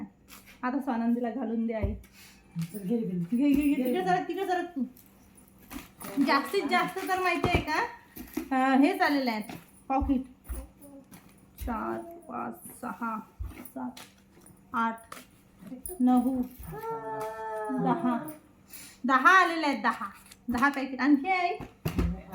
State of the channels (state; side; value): identical; both; correlation 1.00